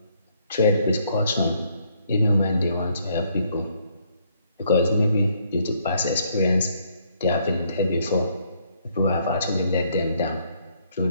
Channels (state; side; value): inverted; both; correlation -0.69